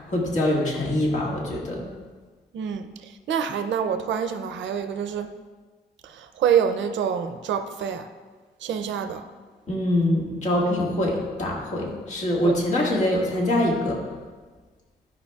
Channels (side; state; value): both; normal; correlation 0.54